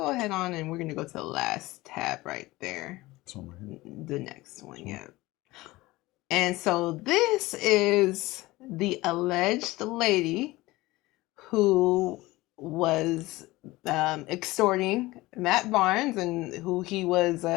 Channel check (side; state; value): right; quieter; 19.6 dB